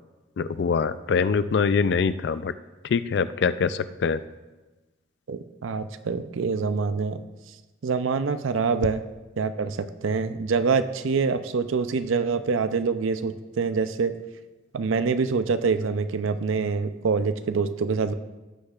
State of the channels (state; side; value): normal; both; correlation 0.08